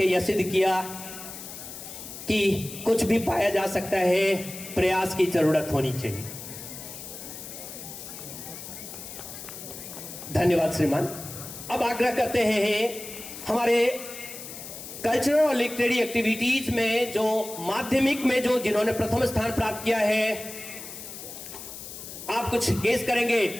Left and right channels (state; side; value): noise; left; hiss, 11 dB below the sound